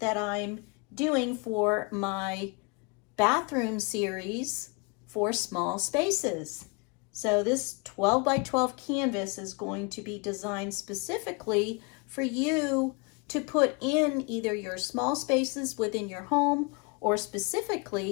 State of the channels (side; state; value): right; quieter; 31.3 dB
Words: I'm doing for my bathroom series for small spaces. So this 12 by 12 canvas is going to be designed specifically for you to put in either your small spaces within your home or